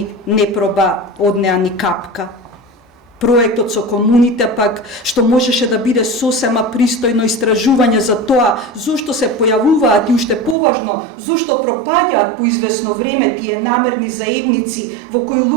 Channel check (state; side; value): drops out; left; at 10.6 s